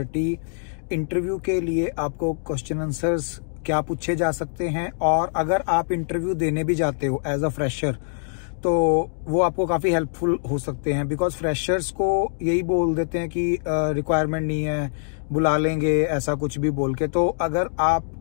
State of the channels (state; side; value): silent; right; digital silence